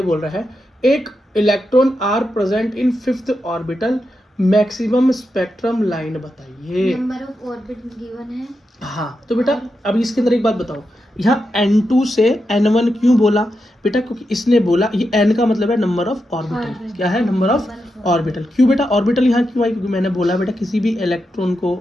बोल रहा है एक electron are present in 5th orbital, maximum spectrum line बताइए। नंबर ऑफ ऑर्बिट गिवन है। हाँ तो बेटा अब इसके अंदर एक बात बताओ, यहाँ n2 से n1 क्यों बोला बेटा, क्योंकि इसने बोला ये n का मतलब है नंबर ऑफ ऑर्बिटल, क्या है, नंबर ऑफ ऑर्बिटल। क्यों बेटा ऑर्बिटल यहाँ क्यों आई, क्योंकि मैंने बोला बेटा किसी भी इलेक्ट्रॉन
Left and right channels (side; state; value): both; normal; correlation 0.87